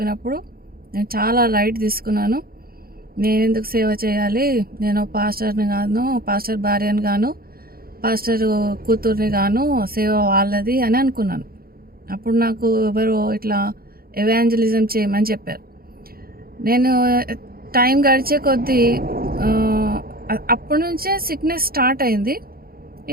నేను చాలా లైట్ తీసుకున్నాను. నేను ఎందుకు సేవ చేయాలి, నేను పాస్టర్ని గాను, పాస్టర్ భార్యని గాను, పాస్టర్ కూతుర్ని గాను, సేవ వాళ్ళది అని అనుకున్నాను. అప్పుడు నాకు ఎవరో ఇట్లా ఎవాంజలిజం చేయమని చెప్పారు. నేను టైం గడిచే కొద్దీ అప్పటి నుంచే సిక్నెస్ స్టార్ట్ అయింది.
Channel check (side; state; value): left; late; 0.44 ms